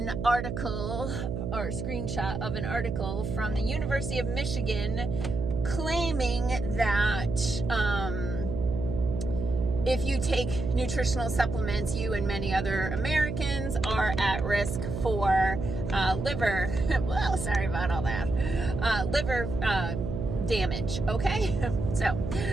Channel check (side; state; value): right; noise; hum, 4 dB below the sound